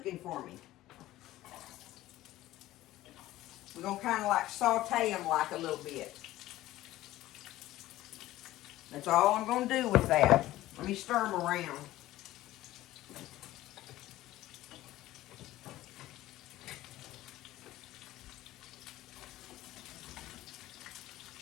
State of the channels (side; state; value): right; quieter; 15.7 dB